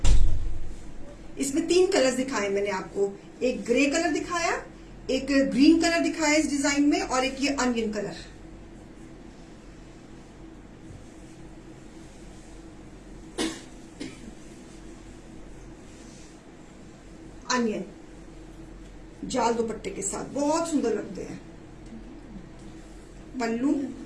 इसमें 3 कलर्स दिखाए मैंने आपको, एक ग्रे कलर दिखाया, एक ग्रीन कलर दिखाया इस डिजाइन में, और एक ये अनियन कलर। अनियन, जाल दुपट्टे के साथ बहुत सुंदर लगते हैं। पल्लू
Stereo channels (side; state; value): both; identical; correlation 1.00